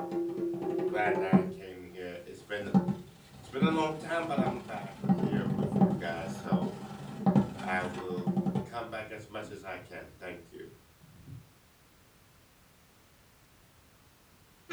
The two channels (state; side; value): identical; both; correlation 1.00